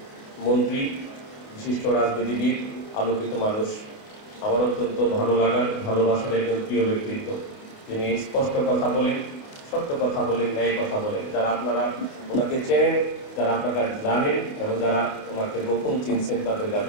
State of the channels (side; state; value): right; late; 28 ms